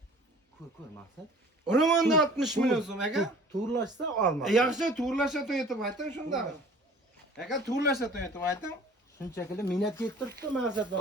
Ko'r maksat. Urumanda 60 milyon so'm aka. To'g'rilashsa olma. Yaxshi to'g'rilashga to'yitib ayting shunda. Aka to'g'rilashga to'yitib ayting. Shunchaki minnat yettiribdi maksat.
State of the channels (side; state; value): both; normal; correlation 0.48